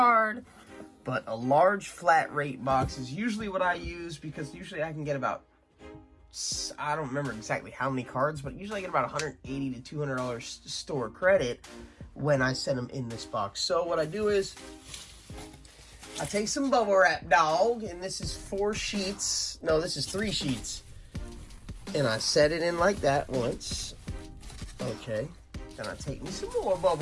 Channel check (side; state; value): both; identical; correlation 1.00